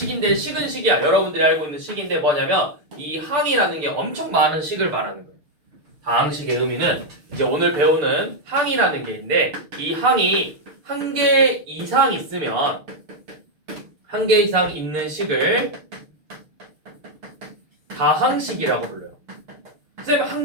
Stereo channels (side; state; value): left; late; 6.6 ms